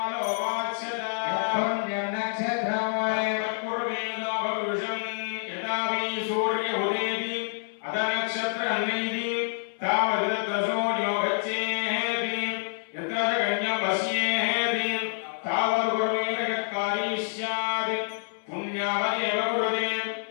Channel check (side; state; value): right; silent; 60 dB below the other